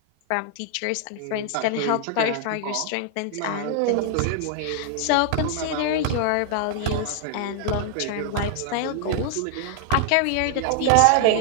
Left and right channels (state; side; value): different; both; correlation 0.00